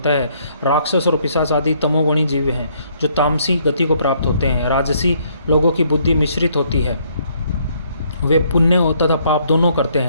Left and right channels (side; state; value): both; inverted; correlation -0.67